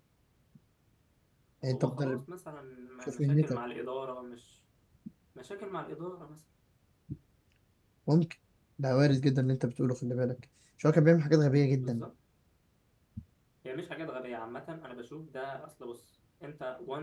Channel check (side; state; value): both; identical; correlation 1.00